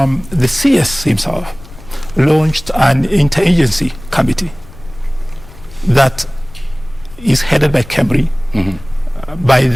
CS himself launched an interagency committee that is headed by KEMRI, by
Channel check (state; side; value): noise; left; rumble, 19 dB below the sound